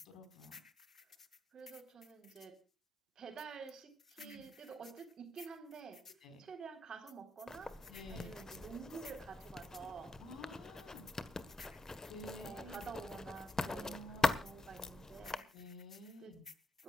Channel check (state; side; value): normal; both; correlation 0.83